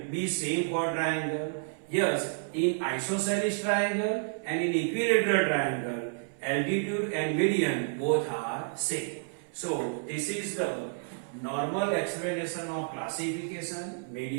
be same for triangle? Yes, in isosceles triangle and in equilateral triangle, altitude and median both are same. So, this is the normal explanation of classification,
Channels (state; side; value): silent; left; 58 dB below the other